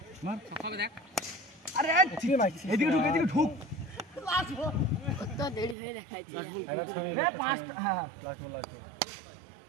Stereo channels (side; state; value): left; drops out; at 5.8 s